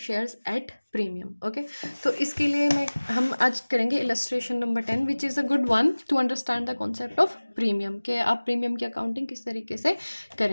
at premium. Okay, तो इसके लिए हम आज करेंगे illustration number 10 which is a good one two understand the concept of premium, कि आप प्रीमियम की अकाउंटिंग किस तरीके से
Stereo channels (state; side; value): inverted; both; correlation -1.00